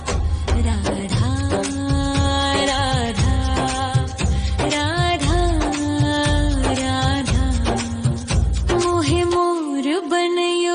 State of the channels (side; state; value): both; identical; correlation 1.00